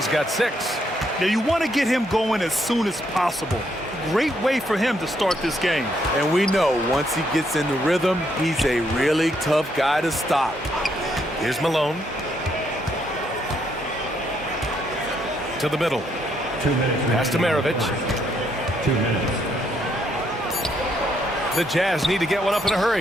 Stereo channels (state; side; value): normal; both; correlation 0.74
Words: got 6. Now, you want to get him going as soon as possible. Great way for him to start this game. And we know once he gets in the rhythm, he's a really tough guy to stop. Here's Malone. To the middle. 2 minutes. Pass to Maravich. 2 minutes. The Jazz need to get one up in a